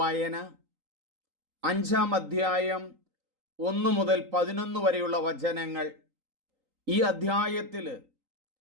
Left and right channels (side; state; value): left; late; 3.9 ms